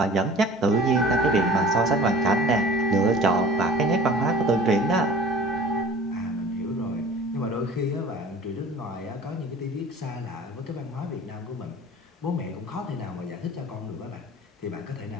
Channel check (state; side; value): normal; both; correlation 0.44